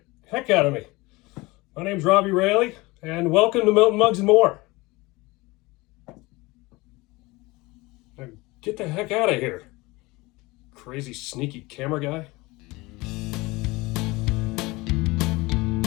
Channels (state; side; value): quieter; right; 22.5 dB